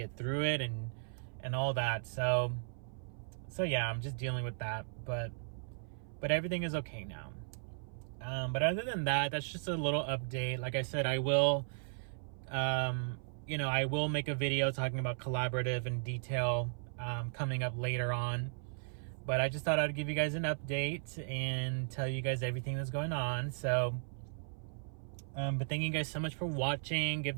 through it and all that. So yeah, I'm just dealing with that, but everything is okay now. But other than that, that's just a little update. Like I said, I will you know, I will make a video talking about collaborative in detail coming up later on. But I just thought I'd give you guys an update and tell you guys everything that's going on. So, but thank you guys so much for watching. Give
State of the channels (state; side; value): silent; left; 54 dB below the other